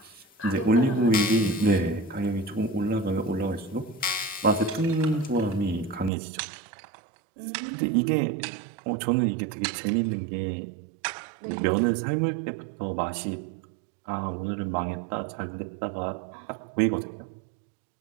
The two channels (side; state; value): left; drops out; at 6.1 s